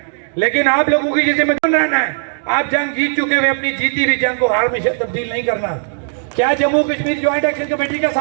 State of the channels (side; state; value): left; silent; digital silence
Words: लेकिन आप लोगों की जिम्मेदारी रहना है। आप जंग जीत चुके हुए अपनी जीती हुई जंग को हार में तब्दील नहीं करना। क्या Jammu Kashmir joint action committee का